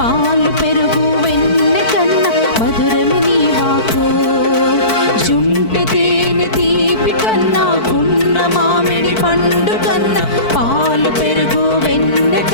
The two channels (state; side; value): late; right; 4.5 ms